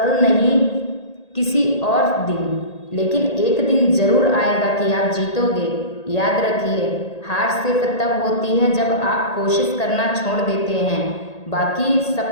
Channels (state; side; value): late; right; 1.8 ms